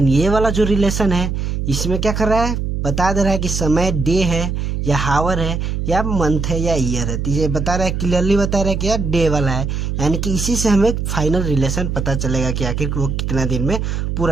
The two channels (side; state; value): right; noise; hum, 2 dB below the sound